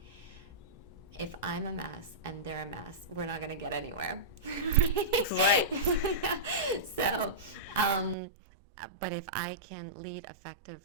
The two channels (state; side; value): drops out; left; at 8.2 s